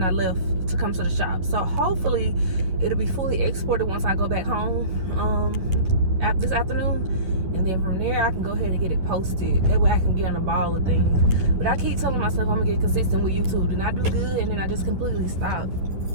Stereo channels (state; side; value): late; left; 10 ms